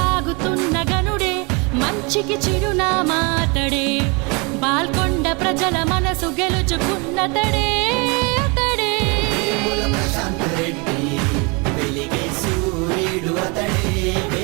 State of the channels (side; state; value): left; quieter; 30.2 dB